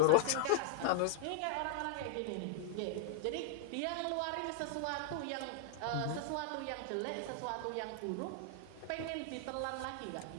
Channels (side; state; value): both; different; correlation -0.01